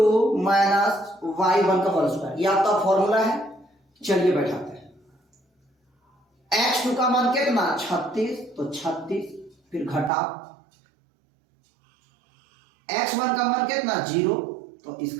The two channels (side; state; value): left; drops out; at 10.1 s